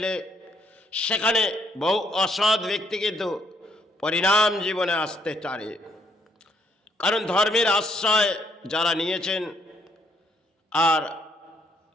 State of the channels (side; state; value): both; normal; correlation 0.70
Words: সেখানে বহু অসৎ ব্যক্তি কিন্তু পরিণাম জীবনে আসতে পারে। কারণ ধর্মের আশ্রয় যারা নিয়েছেন, আর